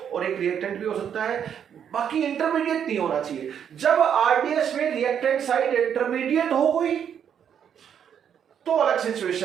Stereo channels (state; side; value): quieter; left; 8.4 dB